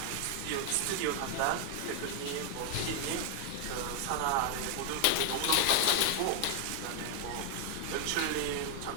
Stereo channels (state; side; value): different; both; correlation 0.00